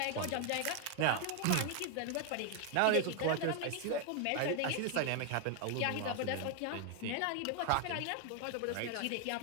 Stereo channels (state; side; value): different; both; correlation 0.00